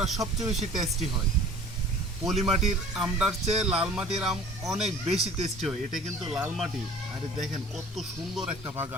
সবচেয়ে বেশি টেস্টি হয়। পলি মাটির আমটার চেয়ে লাল মাটির আম অনেক বেশি টেস্টি হয়। এটা কিন্তু লাল মাটি। আরে দেখেন কত সুন্দর একটা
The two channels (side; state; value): both; normal; correlation 0.47